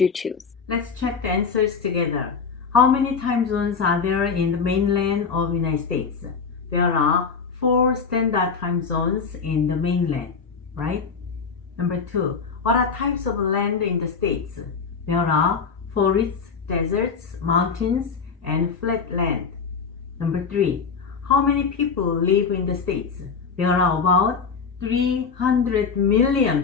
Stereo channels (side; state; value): right; quieter; 5.6 dB